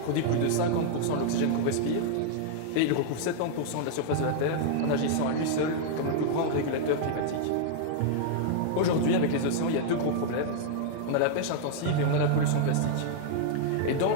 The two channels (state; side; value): different; both; correlation -0.01